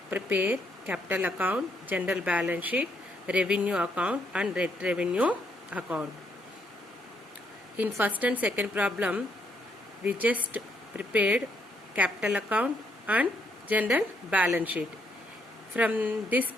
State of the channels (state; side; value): normal; both; correlation 0.74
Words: prepare capital account, general balance sheet, revenue account and net revenue account. In first and second problem, we just prepared capital account and general balance sheet. From this